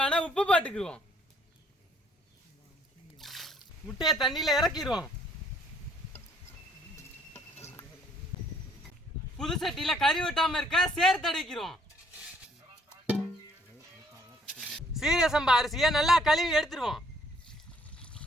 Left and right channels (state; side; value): normal; both; correlation 0.64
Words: உப்பு போட்டுக்குவோம். முட்டையை தண்ணியில இறக்கிடுவோம். புது சட்டியில கறி விட்டாம இருக்க சேர்த்து அடிக்கிறோம். சீரக சம்பா அரிசியை நல்லா கழுவி எடுத்துருவோம்.